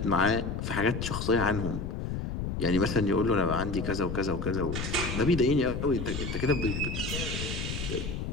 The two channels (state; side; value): noise; left; rumble, 4 dB below the sound